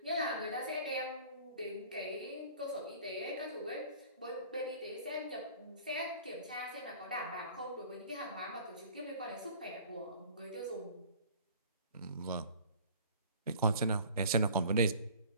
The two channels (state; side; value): inverted; both; correlation -0.46